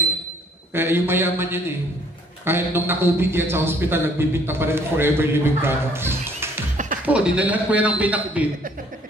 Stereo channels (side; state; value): both; normal; correlation 0.60